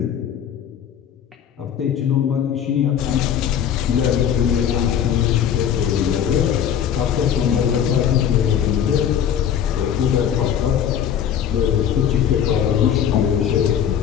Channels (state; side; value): quieter; right; 9.0 dB